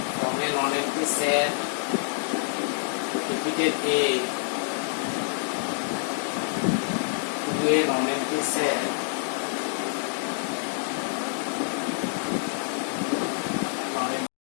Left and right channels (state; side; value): silent; right; 60 dB below the other